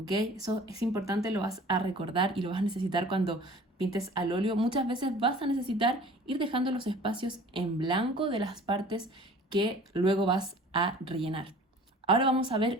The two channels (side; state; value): both; normal; correlation 0.46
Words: Eso es importante, lo vas a recordar y lo vas a necesitar cuando pintes al óleo. Muchas veces vas a necesitar ir dejando los espacios en blanco de las partes que luego vas a rellenar. Ahora vamos a